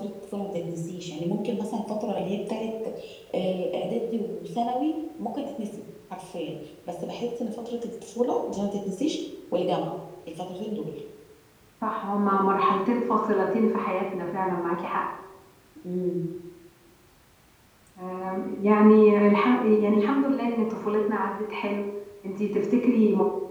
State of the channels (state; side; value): identical; both; correlation 1.00